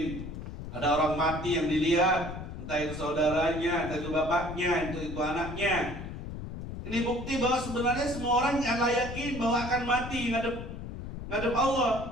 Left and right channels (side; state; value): left; noise; rumble, 9 dB below the sound